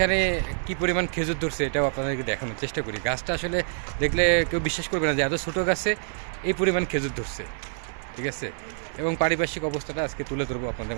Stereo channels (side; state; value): left; silent; digital silence